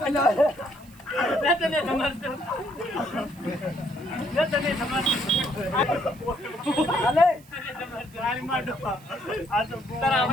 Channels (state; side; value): noise; right; hiss, 26 dB below the sound